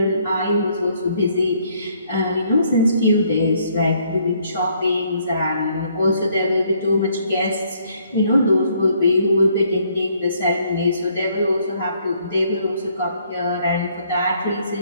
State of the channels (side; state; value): both; inverted; correlation -0.67